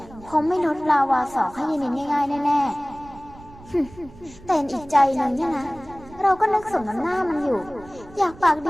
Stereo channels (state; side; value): noise; right; rumble, 21 dB below the sound